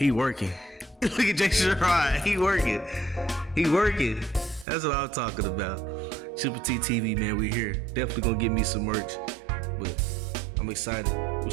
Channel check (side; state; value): left; drops out; at 4.7 s